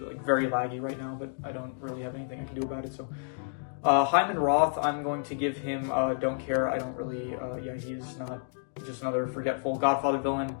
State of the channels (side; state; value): right; silent; digital silence